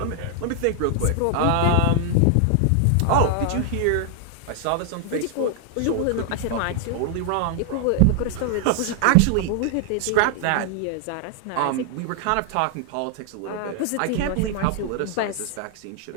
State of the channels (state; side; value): different; both; correlation 0.00